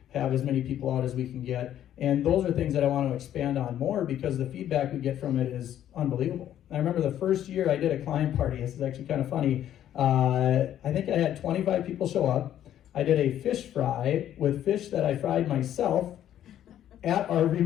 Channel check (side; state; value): right; quieter; 11.2 dB